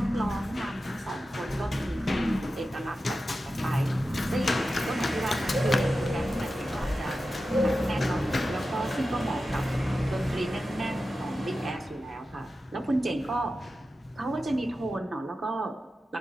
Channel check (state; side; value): normal; both; correlation 0.92